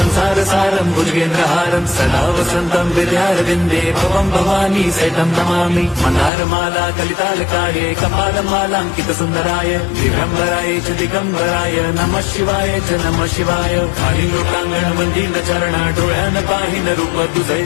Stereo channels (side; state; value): right; drops out; at 6.3 s